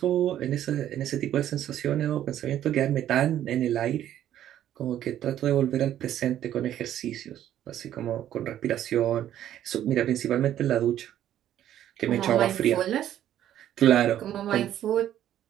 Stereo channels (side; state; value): left; quieter; 11.5 dB